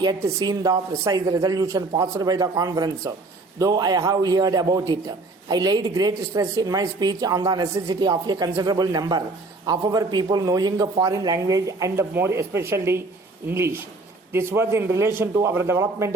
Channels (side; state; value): left; quieter; 3.3 dB